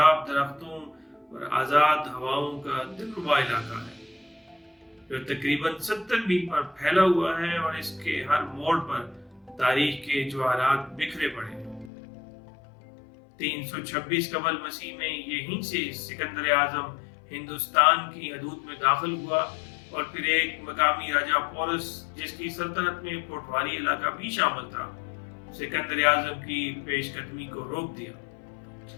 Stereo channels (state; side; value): drops out; right; at 11.9 s